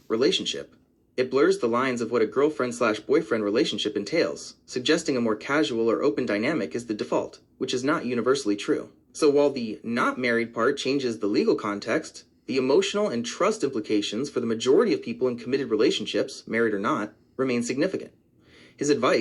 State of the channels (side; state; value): both; identical; correlation 1.00